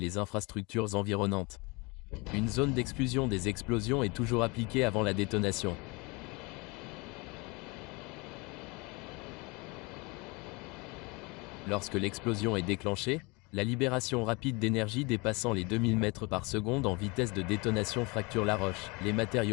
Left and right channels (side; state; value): right; quieter; 27.0 dB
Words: infrastructures environnantes. Une zone d'exclusion des explosions est toujours appliquée avant la détonation. Lorsque l'explosion est déclenchée, la libération rapide d'énergie dépassant les 2000 mètres par seconde en vitesse de détonation fracture la roche. Les